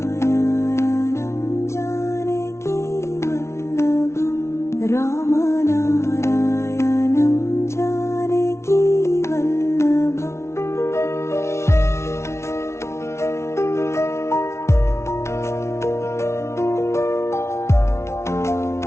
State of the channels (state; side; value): late; right; 0.13 ms